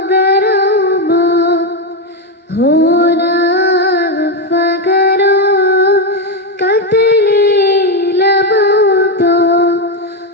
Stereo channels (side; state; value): both; normal; correlation 0.07